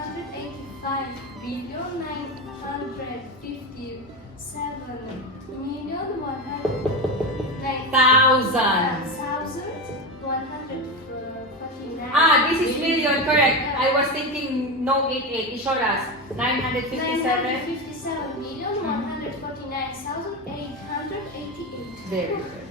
This is million, correct. I was thinking no 88. Ishoras. 957. 957,149,888. Very good.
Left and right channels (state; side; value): normal; both; correlation 0.18